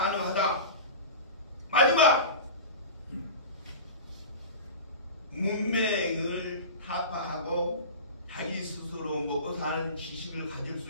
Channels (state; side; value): inverted; both; correlation -0.32